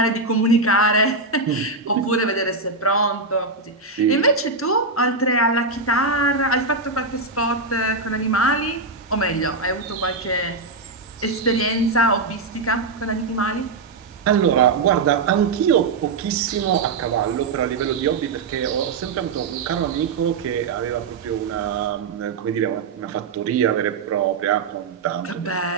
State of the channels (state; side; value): quieter; left; 4.0 dB